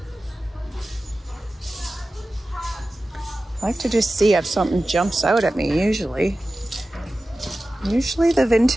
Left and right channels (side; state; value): both; normal; correlation 0.95